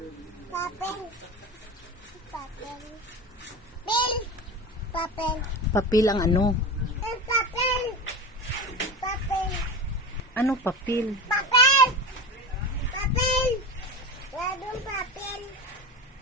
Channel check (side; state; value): both; normal; correlation 0.27